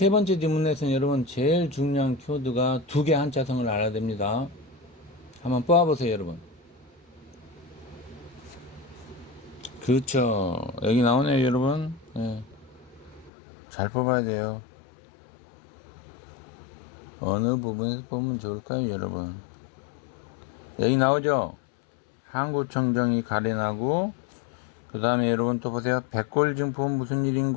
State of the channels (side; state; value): right; drops out; at 13.3 s